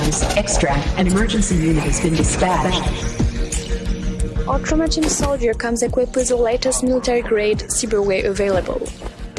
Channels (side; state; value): both; identical; correlation 1.00